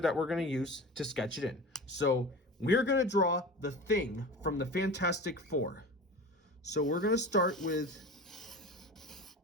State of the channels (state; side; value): normal; both; correlation 0.33